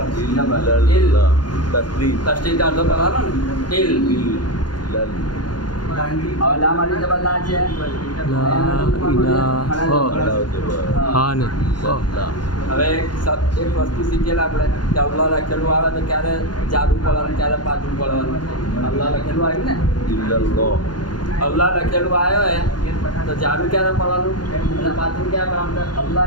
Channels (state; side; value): late; right; 0.70 ms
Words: તસ્તીત અડધો કરવાનો ને ઇલ. હવે લા માટે જબર લા છે. હવે એક વસ્તુ શીખેલા આપણે કે અલ્લાહ લખેલું આવે તો ક્યારે જાદુ પડવાનું, ક્યારે પાછું પડવાનું. અલ્લાહ લખેલું આવ્યું ને, અલ્લાહ લખેલું આવ્યો હે તો જાદુ ક્યારે પડવાનું અને પાછું ક્યારે પડવાનું? અલ્લાહ